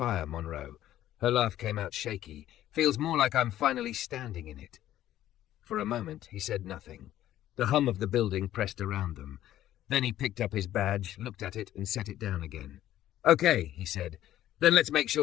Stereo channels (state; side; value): quieter; right; 12.9 dB